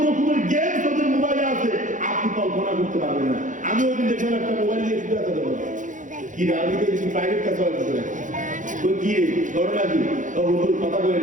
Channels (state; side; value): late; left; 0.37 ms